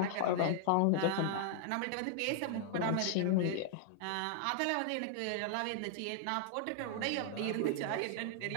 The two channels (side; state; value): both; different; correlation 0.00